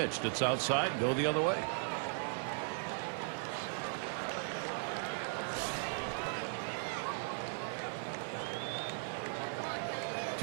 It's outside, go the other way.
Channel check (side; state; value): left; silent; 53 dB below the other